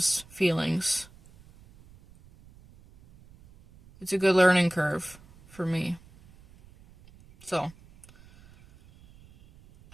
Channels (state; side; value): noise; right; rumble, 25 dB below the sound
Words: feelings. It's a good learning curve for me. So,